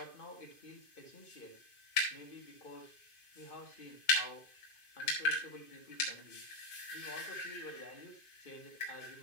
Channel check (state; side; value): late; right; 2.5 ms